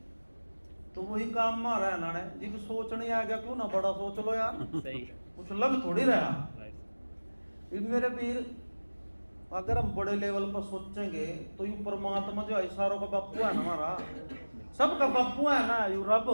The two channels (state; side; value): inverted; both; correlation -1.00